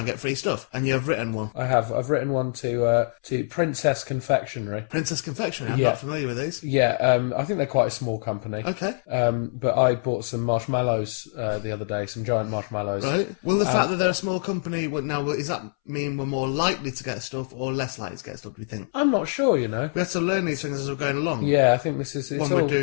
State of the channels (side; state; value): right; silent; 62 dB below the other